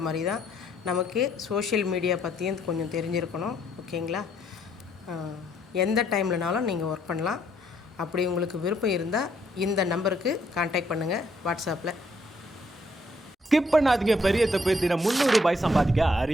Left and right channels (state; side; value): normal; both; correlation 0.69